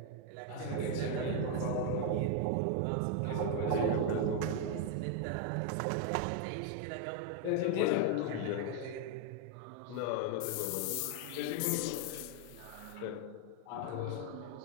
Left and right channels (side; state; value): both; different; correlation 0.01